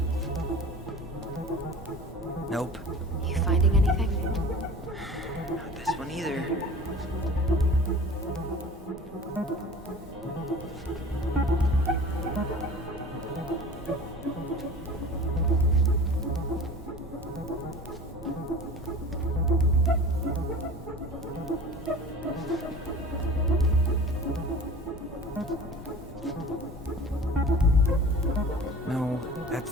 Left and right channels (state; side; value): normal; both; correlation 0.40